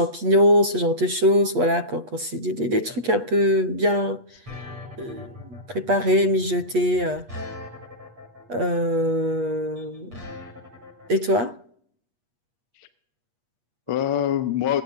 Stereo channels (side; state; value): left; late; 8.4 ms